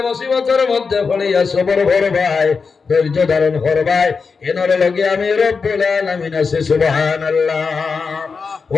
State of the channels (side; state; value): right; quieter; 5.1 dB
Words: মুসিবতের মধ্যে হলিয়া সবর করবাই, ধৈর্য ধারণ করবাই, এনর লগে আমি রব্বুল আলামিন আছি। সুবহানাল্লাহ।